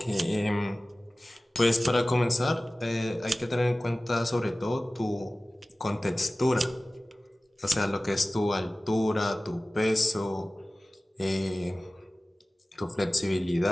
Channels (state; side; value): normal; both; correlation 0.97